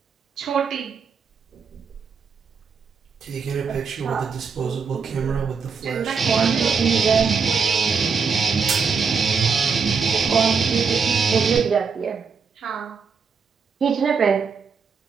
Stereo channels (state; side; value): quieter; left; 5.7 dB